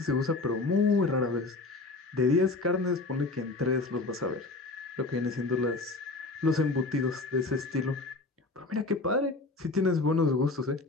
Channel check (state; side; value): quieter; right; 3.4 dB